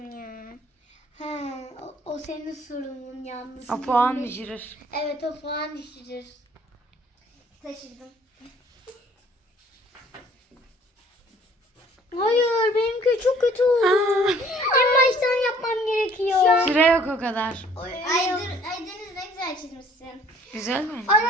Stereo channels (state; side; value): normal; both; correlation 0.56